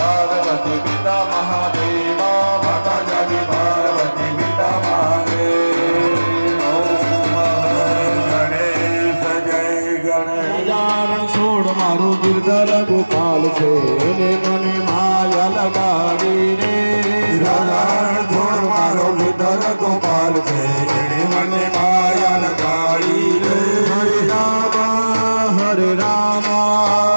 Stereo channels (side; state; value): both; inverted; correlation -1.00